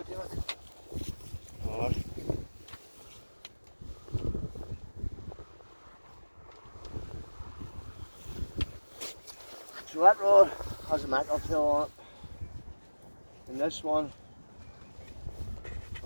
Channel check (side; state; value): both; inverted; correlation -1.00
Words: David. Oh. So that rod has a mackerel tail on it. And this one,